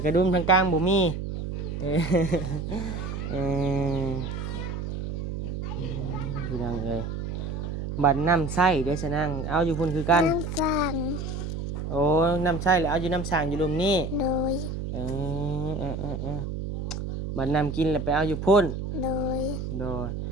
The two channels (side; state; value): right; noise; hum, 5 dB below the sound